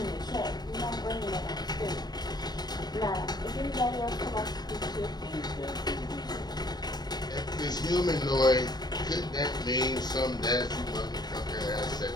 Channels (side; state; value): right; late; 0.20 ms